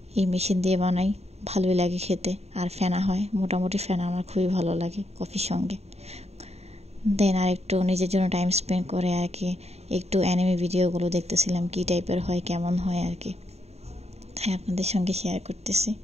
এই মেশিন দিয়ে বানাই, ভালোই লাগে খেতে আর ফেনা হয়। মোটামুটি ফেনা আমার খুবই ভালো লাগে কফির সঙ্গে। দেন আর একটু নিজের জন্য টাইম স্পেন্ড করে আর কি একটু অ্যানিমে ভিডিওগুলো দেখতেছিলাম, কী টাইপের হয় কেমন হয় আর কি, তাই আপনাদের সঙ্গে শেয়ার করতেছি।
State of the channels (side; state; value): left; late; 0.31 ms